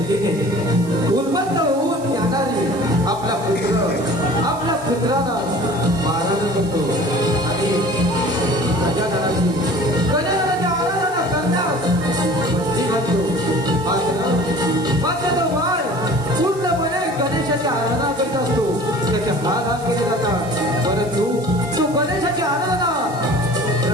उन्मत्त होऊन येणारी आपला पुत्राला मारहाण करतो आणि गजाननाची आराधना करण्यास बंदी घालतो. मात्र तो बाळ पूर्णपणे गणेशाची आराधना करत असतो. त्याचे हात केले जातात. परंतु तो गणेशाची आराधना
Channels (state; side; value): noise; right; hiss, 19 dB below the sound